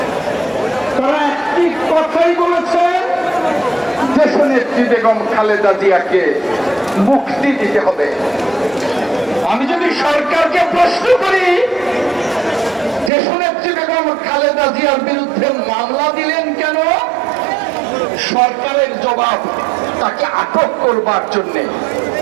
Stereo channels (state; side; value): drops out; left; at 13.1 s